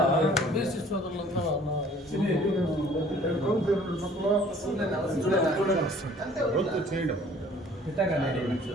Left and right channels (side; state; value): both; normal; correlation 0.53